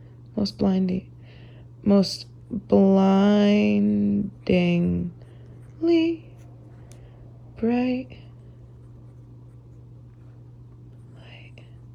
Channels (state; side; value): identical; both; correlation 1.00